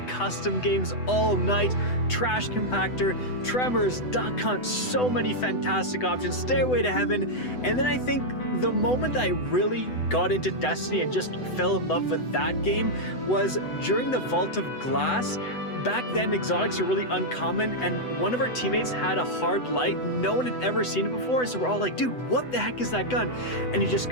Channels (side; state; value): right; late; 8.0 ms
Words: custom games all night, Trash Compactor, Tremors, Duck Hunt, so many fantastic options, Stairway to Heaven. And then I think the moment I really got into Destiny and just fell in love with that game was during the Vault of Glass. Back then, exotics are really uncommon, and one of our teammates had a hard light. No one had ever seen it before, so we're all like, dude, what the heck is that gun? And he just